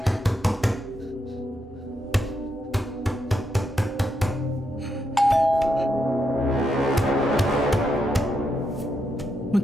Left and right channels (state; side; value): normal; both; correlation 0.82